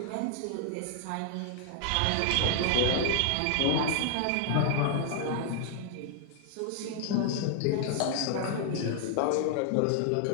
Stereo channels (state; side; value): different; both; correlation 0.00